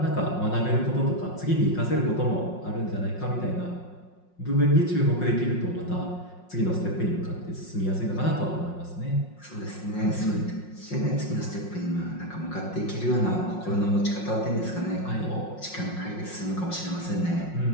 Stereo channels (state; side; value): late; right; 5.5 ms